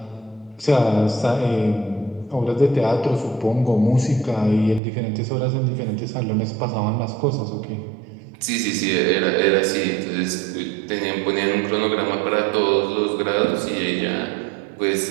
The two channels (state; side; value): drops out; left; at 4.8 s